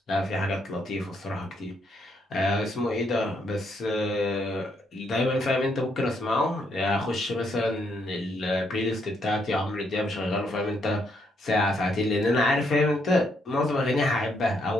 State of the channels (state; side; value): normal; both; correlation 0.75